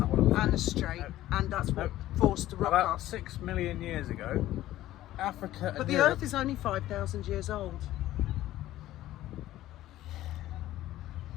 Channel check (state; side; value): quieter; right; 14.6 dB